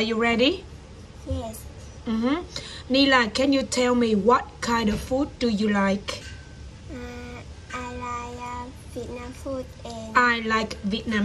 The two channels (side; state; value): both; identical; correlation 1.00